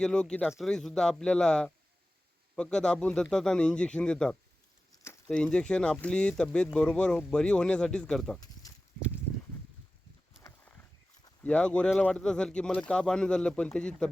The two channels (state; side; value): normal; both; correlation 0.95